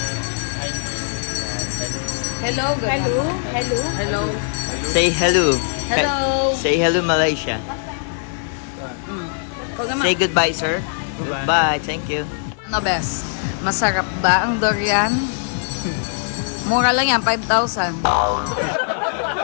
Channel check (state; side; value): silent; right; 56 dB below the other